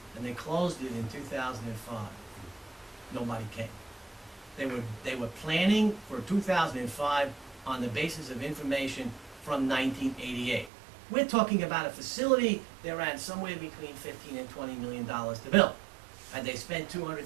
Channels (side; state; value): left; drops out; at 10.7 s